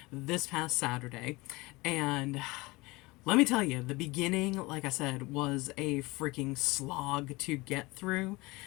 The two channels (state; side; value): quieter; right; 23.1 dB